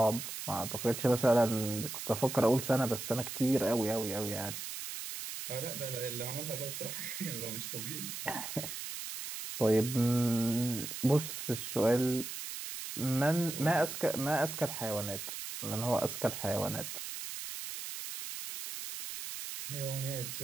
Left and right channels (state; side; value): noise; right; hiss, 7 dB below the sound